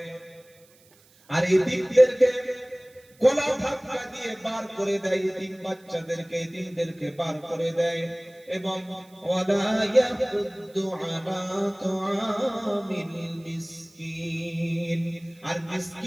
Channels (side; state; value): right; noise; hiss, 29 dB below the sound